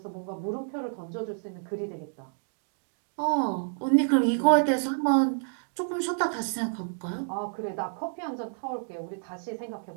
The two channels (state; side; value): silent; left; digital silence